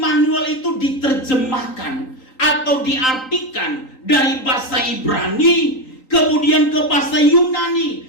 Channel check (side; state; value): right; late; 3.9 ms